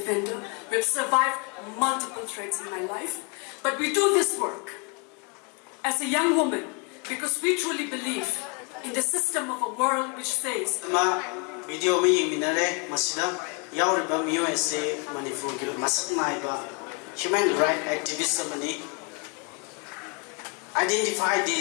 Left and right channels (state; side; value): quieter; right; 33.9 dB